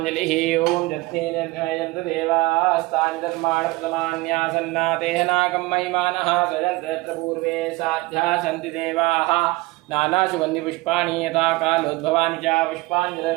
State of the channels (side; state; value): left; quieter; 21.6 dB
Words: ओम जत्नेन देवास्तानि धर्माणि प्रथमान्यासन्नातेह नागं महिमानः सजन्तत्र पूर्वे साध्या सन्ति देवाः नानासुगन्धि पुष्पाणि यथा कालोद्भवानि च